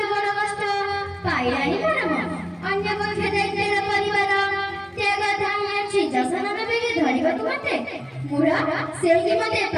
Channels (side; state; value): both; identical; correlation 1.00